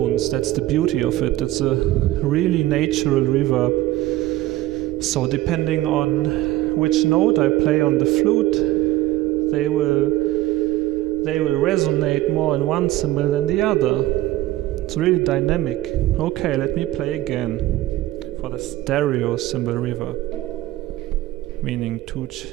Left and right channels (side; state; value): left; quieter; 16.2 dB